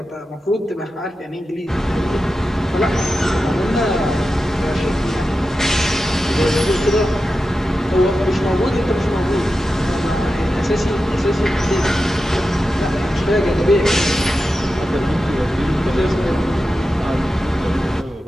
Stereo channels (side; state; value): both; normal; correlation 0.91